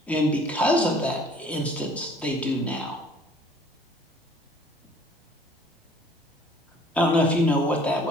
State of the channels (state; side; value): normal; both; correlation 0.54